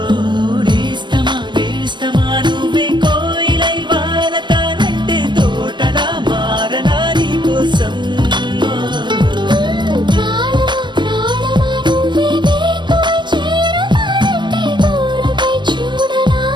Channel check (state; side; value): late; left; 0.22 ms